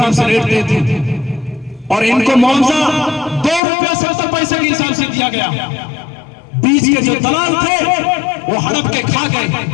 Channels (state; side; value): drops out; right; at 3.6 s